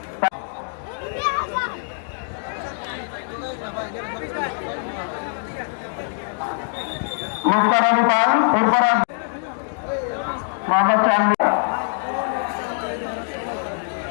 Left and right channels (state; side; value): silent; right; digital silence